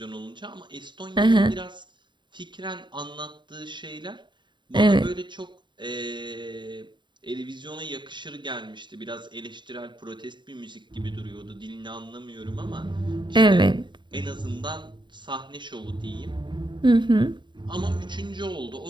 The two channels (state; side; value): late; left; 0.22 ms